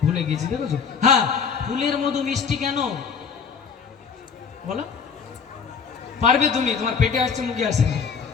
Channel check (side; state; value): right; quieter; 6.1 dB